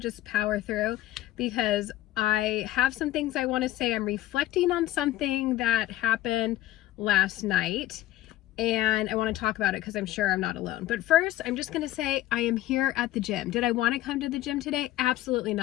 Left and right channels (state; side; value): quieter; right; 15.0 dB